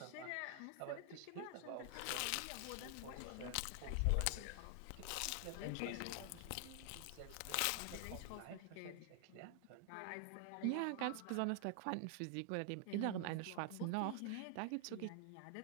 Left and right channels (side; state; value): both; different; correlation 0.00